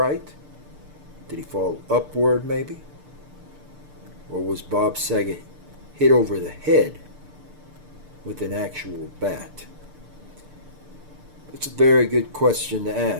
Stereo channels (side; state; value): left; late; 6.7 ms